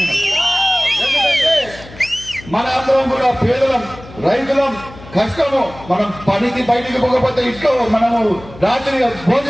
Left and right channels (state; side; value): noise; left; hum, 18 dB below the sound